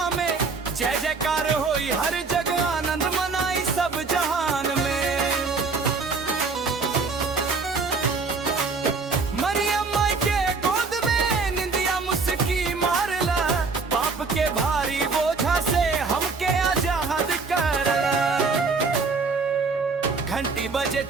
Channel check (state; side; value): quieter; left; 4.4 dB